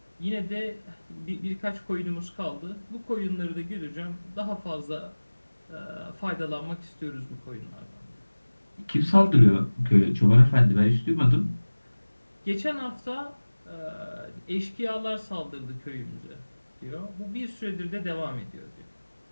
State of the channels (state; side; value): inverted; both; correlation -1.00